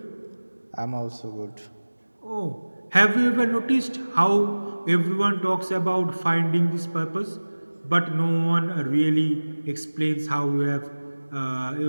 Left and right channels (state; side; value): inverted; both; correlation -1.00